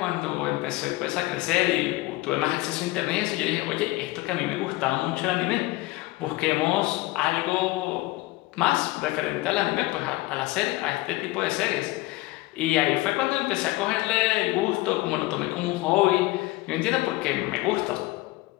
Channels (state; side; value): quieter; right; 19.9 dB